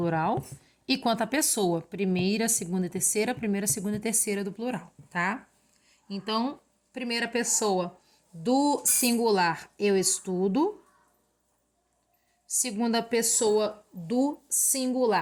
e quanto à pessoa, primeira, segunda e terceira, primeira, segunda e terceira do plural, tá? Então, primeira pessoa do singular, eu estudo. Segunda pessoa do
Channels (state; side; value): identical; both; correlation 1.00